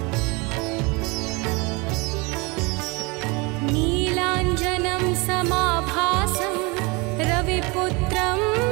नीलाञ्जनं समाभासं रविपुत्रं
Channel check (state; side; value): quieter; left; 27.2 dB